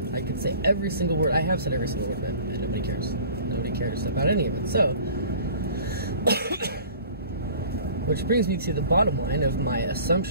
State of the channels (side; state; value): both; inverted; correlation -0.46